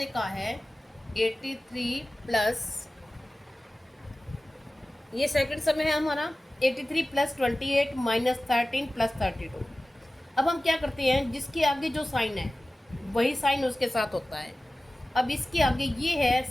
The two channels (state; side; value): normal; both; correlation 0.96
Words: कहा है 83 प्लस, ये सेकंड सम है हमारा 83 प्लस 28 माइनस 13 प्लस 32। अब हम क्या करते हैं, जिसके आगे जो साइन है वही साइन उसके साथ होता है। अब इसके आगे ये है